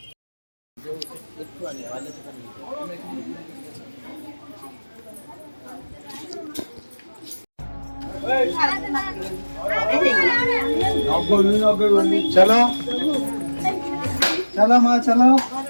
चलो चलो माँ चलो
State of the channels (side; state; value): both; inverted; correlation -1.00